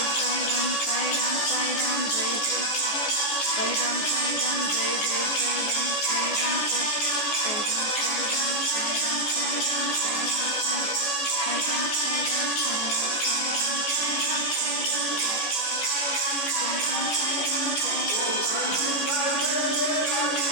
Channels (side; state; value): right; late; 14 ms